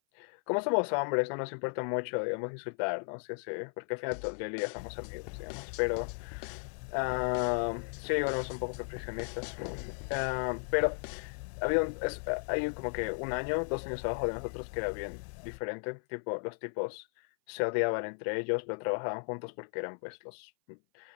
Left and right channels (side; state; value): right; silent; 54 dB below the other